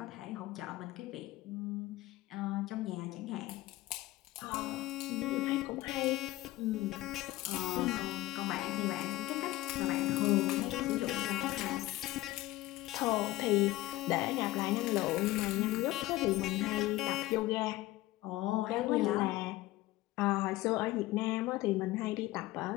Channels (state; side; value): quieter; right; 17.4 dB